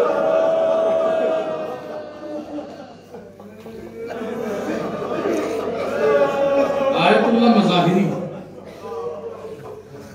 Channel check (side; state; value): both; identical; correlation 1.00